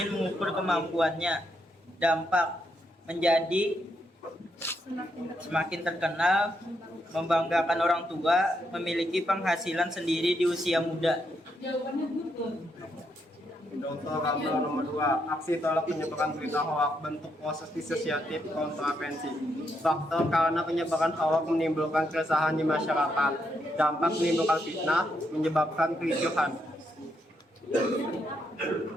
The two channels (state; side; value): normal; both; correlation 0.79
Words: mengukur kemampuannya. Dampak menjadi semakin terkenal, membanggakan orang tua, memiliki penghasilan sendiri di usia muda. Contoh gambar nomor 2, aksi tolak penyebaran berita hoak, bentuk proses disosiatif kontravensi. Faktor karena penyebaran hoak menimbulkan keresahan di masyarakat. Dampak menimbulkan fitnah, menyebabkan kericuhan.